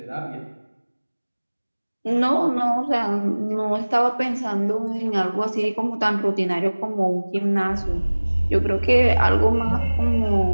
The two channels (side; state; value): both; inverted; correlation -1.00